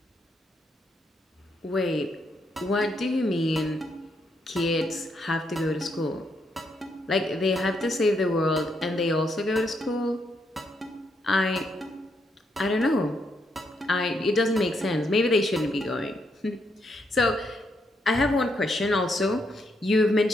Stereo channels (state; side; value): normal; both; correlation 0.78